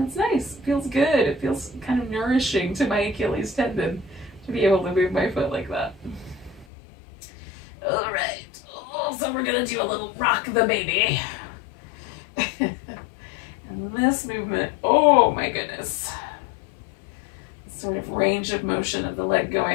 it's nice, it feels good. It feels kind of nourishing to my Achilles tendon to be able to move my foot like that. All right, so we're gonna do a little rock the baby. And this movement, oh my goodness. Sort of range of motion of the leg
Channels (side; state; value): right; drops out; at 6.7 s